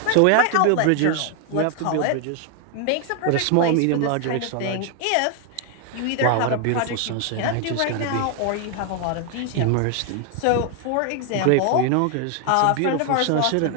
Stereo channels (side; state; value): both; different; correlation 0.00